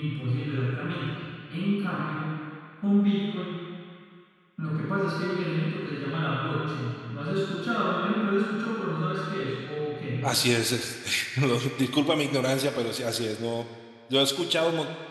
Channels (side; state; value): both; identical; correlation 1.00